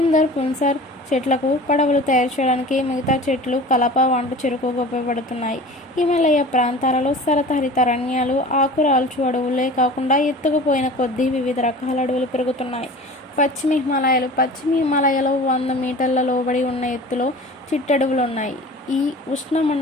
పున్సార్ చెట్లకు పడవలు తయారు చేయడానికి, మిగతా చెట్లు కలప, వంట చెరుకుగా ఉపయోగపడుతున్నాయి. హిమాలయ ప్రాంతాలలో శరతహరిత అరణ్యాలు, ఆకురాల్చు అడవులే కాకుండా ఎత్తుకుపోయిన కొద్దీ వివిధ రకాల అడవులు పెరుగుతున్నాయి. పశ్చిమ హిమాలయాలో 100 మీటర్ల లోబడి ఉన్న ఎత్తులో చిట్టడవులు ఉన్నాయి. ఈ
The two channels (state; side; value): normal; both; correlation 0.39